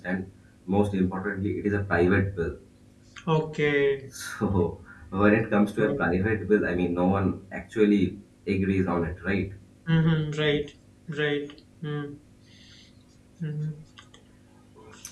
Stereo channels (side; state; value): both; identical; correlation 1.00